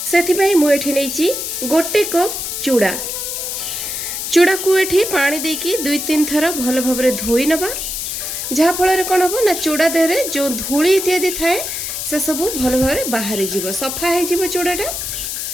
सेथि पई मु एठी नैची गोटे कप चूड़ा। चूड़ा को एठी पानी देकी 2-3 थर भलो भाबरे धोई नबा, जहा फल कौन हम ना चूड़ा देहरे जो धूली इत्यादि थाए से सब भल भाव बाहरी जीव, सफा हो चूड़ाटा।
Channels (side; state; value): left; noise; hiss, 4 dB below the sound